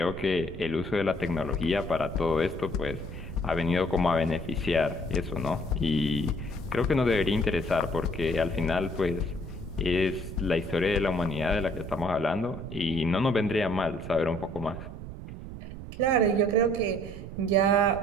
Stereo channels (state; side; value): noise; right; rumble, 11 dB below the sound